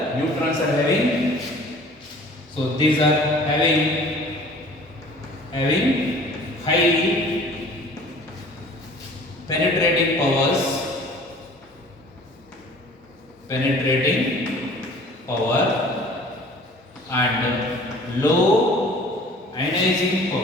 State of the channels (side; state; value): both; normal; correlation 0.48